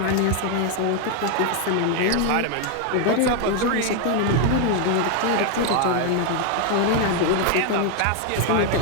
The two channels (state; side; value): different; both; correlation 0.00